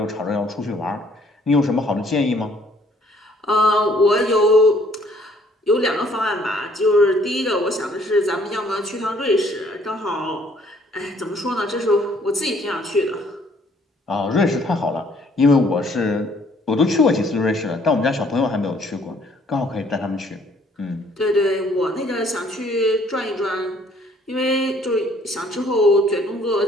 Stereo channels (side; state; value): both; normal; correlation 0.62